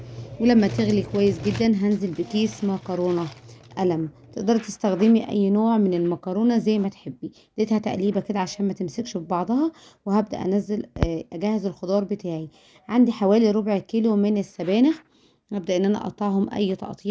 ولما تغلي كويس جدا هنزل بكيس مكرونة قلم. تقدري تستخدمي اي نوع من المكرونة زي ما تحبي. اديتها تقليبة كده عشان ما تمسكش في بعضها، وهبدأ انزل اجهز الخضار بتاعي. عندي حوالي ربع كيلو من السبانخ، هبدأ ان انا اقطعهم اي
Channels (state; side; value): identical; both; correlation 1.00